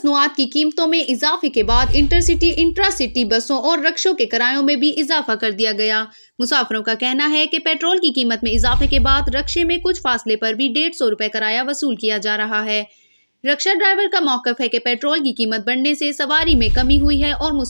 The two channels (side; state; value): both; inverted; correlation -1.00